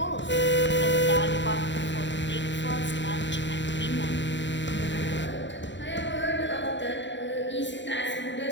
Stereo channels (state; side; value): late; right; 0.53 ms